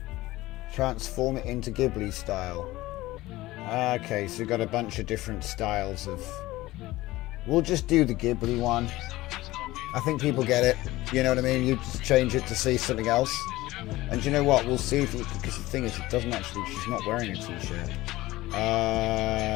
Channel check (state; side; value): quieter; right; 18.0 dB